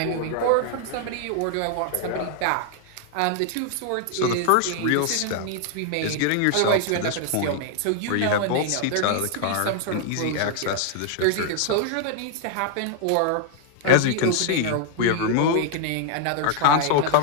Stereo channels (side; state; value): both; different; correlation 0.00